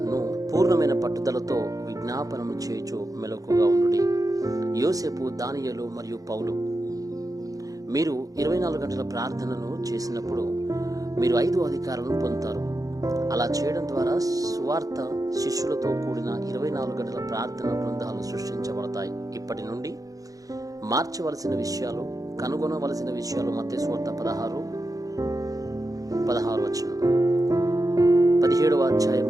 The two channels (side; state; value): left; late; 0.17 ms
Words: పూర్ణమైన పట్టుదలతో విజ్ఞాపనము చేయుచు మెలకుగా ఉండుడి. యోసేపు, దానియేలు మరియు పౌలు. మీరు 24 గంటల ప్రార్థనను చేసినప్పుడు మీరు 5 అధికారాలను పొందుతారు. అలా చేయడం ద్వారా సువార్త శిష్యులతో కూడిన 24 గంటల ప్రార్థన బృందాలు సృష్టించబడతాయి. ఇప్పటి నుండి మార్చవలసిన విషయాలు, కనుగొనవలసిన విషయాలు మత్తయి సువార్త 16 17వ